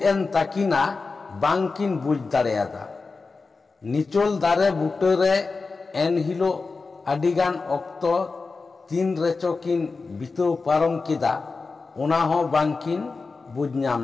ताकिना बांकिन बुझ दाड़ेयादा निचोल दारे बुटे रे एन हिलो अडिगान ऑक्तो तीन रेचोकिन बितो पारम किदा ओना हो बांकिन बुझ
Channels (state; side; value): quieter; right; 4.2 dB